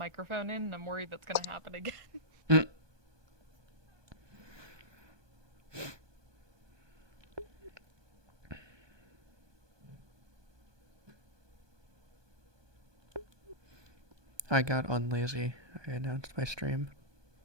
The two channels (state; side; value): late; left; 1.2 ms